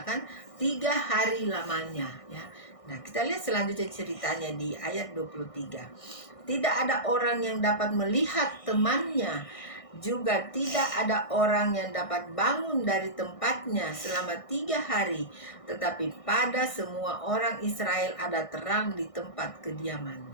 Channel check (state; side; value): late; right; 1.6 ms